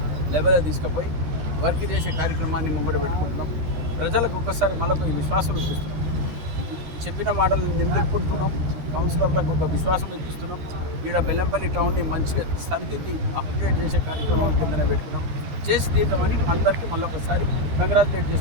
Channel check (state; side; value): late; left; 13 ms